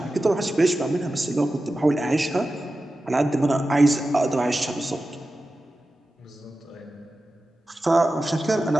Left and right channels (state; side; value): normal; both; correlation 0.93